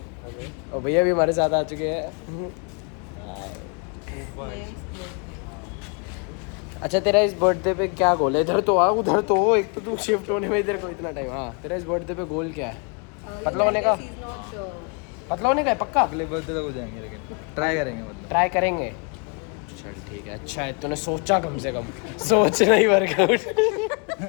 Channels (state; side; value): quieter; right; 36.5 dB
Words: और भैया भी हमारे साथ आ चुके हैं। अच्छा तेरा इस बर्थडे पे क्या गोल है? इधर तो आ, उधर तो हो, एक तो तू शिफ्ट होने में इधर को इतना टाइम। हाँ तेरा इस बर्थडे पे गोल क्या है? पतला होने का? पतला होने का है पक्का? अगले बर्थडे तक हो जाएंगे, लेकिन ट्राई करेंगे, मतलब ट्राई करेंगे। चल ठीक है, अच्छा है तूने सोचा, कम से कम सोचना ही वर्कआउट।